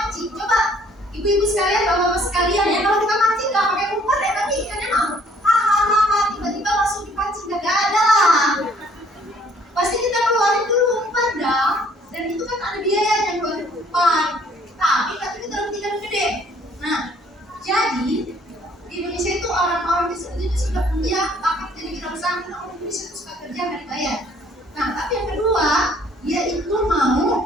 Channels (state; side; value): normal; both; correlation 0.61